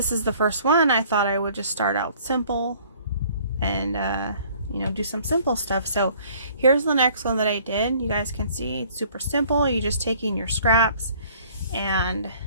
is the first one, I thought I would just start out simple and, you know, do some simple stuff. So here's the next one that I did. You guys can see it's super simple. You're just taking your scraps and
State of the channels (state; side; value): inverted; both; correlation -0.56